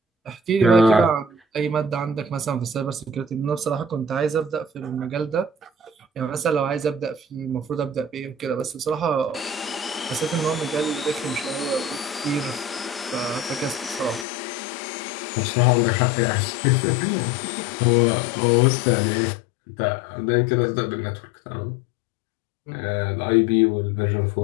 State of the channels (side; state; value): right; drops out; at 14.2 s